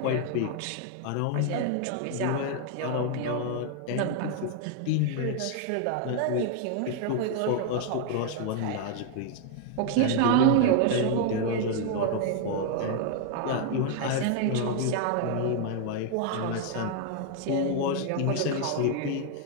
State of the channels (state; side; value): different; both; correlation 0.00